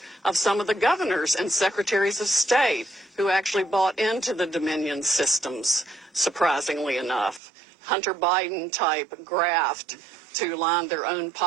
of some of the governors and secretaries of state who actually bought into the Dominion systems, surprisingly enough. Hunter Biden type graft to line their own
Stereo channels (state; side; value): drops out; left; at 7.4 s